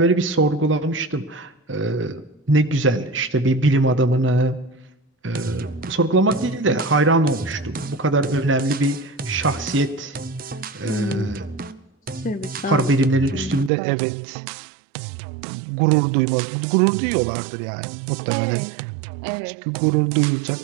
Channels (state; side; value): drops out; left; at 13.7 s